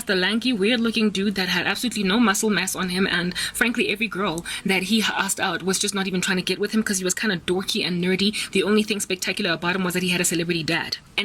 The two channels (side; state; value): both; identical; correlation 1.00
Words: the lanky, weird-looking dude that had absolutely no muscle mass on him, and frankly, every girl that he asked out was just not even trying to get with him because he was kind of dorky and nerdy. The only thing spectacular about him was that he had a celebrity dad.